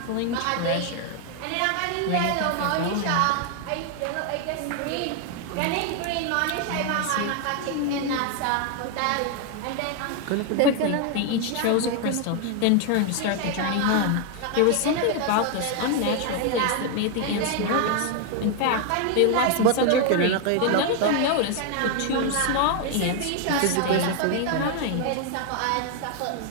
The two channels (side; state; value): both; different; correlation 0.00